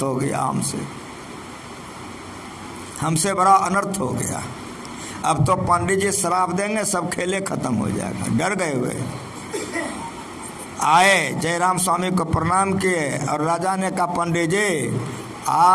हो गया, हमसे बड़ा अनर्थ हो गया। अब तो पंडित जी श्राप देंगे, सब खेले खत्म हो जाएगा। डर गए हुए आए, जयराम स्वामी को प्रणाम किए और राजा ने कहा पंडित जी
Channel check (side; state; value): both; identical; correlation 1.00